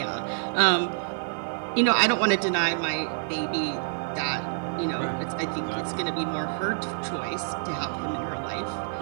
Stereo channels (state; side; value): silent; left; digital silence